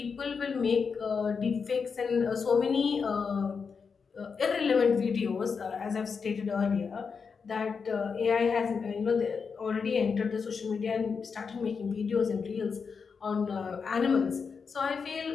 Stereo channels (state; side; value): quieter; right; 5.6 dB